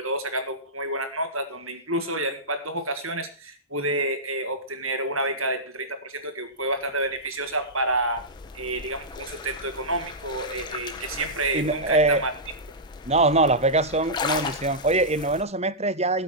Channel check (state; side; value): normal; both; correlation -0.14